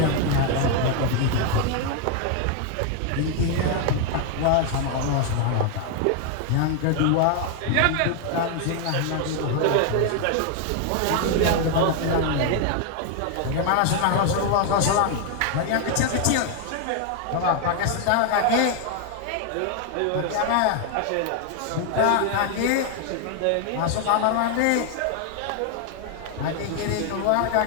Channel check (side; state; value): both; different; correlation 0.00